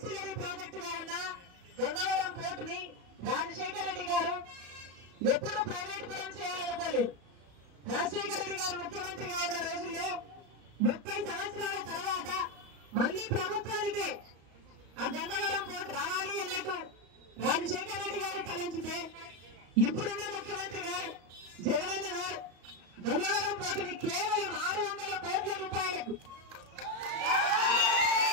ప్రాజెక్ట్ గా ఉన్న గంగవరం పోర్ట్ ని రాజశేఖర రెడ్డి గారు ఎప్పుడూ ప్రైవేట్ పరం చేయాలనుకోలేదు. రాజశేఖర రెడ్డి గారు ముఖ్యమంత్రిగా ఉన్న రోజుల్లో 30 సంవత్సరాల తర్వాత మళ్లీ ప్రభుత్వానికే ఆ గంగవరం పోర్ట్ రావాలి అన్నట్టు రాజశేఖర రెడ్డి గారు తలంచితే ఇప్పుడున్న ముఖ్యమంత్రి గారు జగనన్న గారు గంగవరం పోర్టుని కేవలం 600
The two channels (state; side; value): late; left; 34 ms